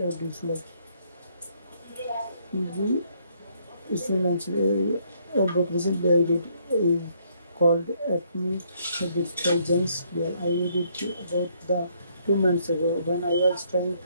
dislike. Easy student answer. A book recently I read is called Atomic Habits by James Clear. I read it about the 2 months ago when I was trying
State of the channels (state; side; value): inverted; both; correlation -0.69